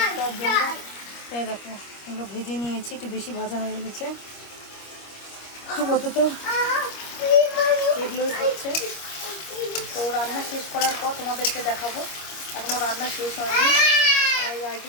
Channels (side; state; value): right; late; 25 ms